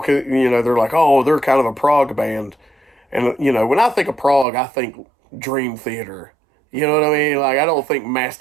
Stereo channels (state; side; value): drops out; left; at 4.5 s